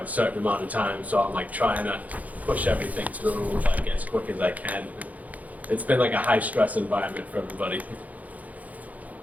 a certain amount of time, so I'm like trying to push everything through like as quick as I can. It's been like a high-stress environment for everybody.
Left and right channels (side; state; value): left; late; 0.076 ms